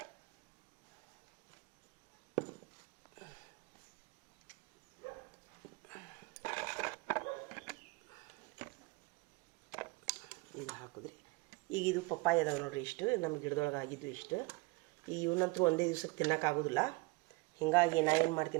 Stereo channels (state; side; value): quieter; left; 24.4 dB